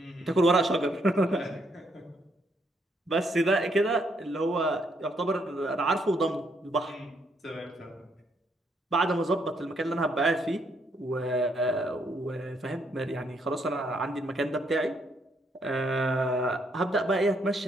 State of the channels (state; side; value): normal; both; correlation 0.73